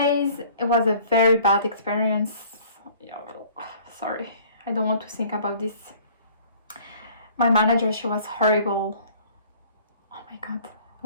It was a very bad experience. Sorry, I don't want to think about this. My manager, she was horrible. Oh my god.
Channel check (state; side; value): inverted; both; correlation -0.52